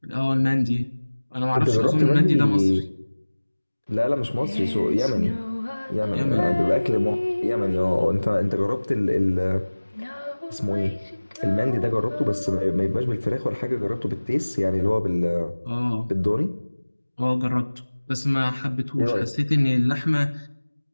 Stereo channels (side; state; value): both; inverted; correlation -1.00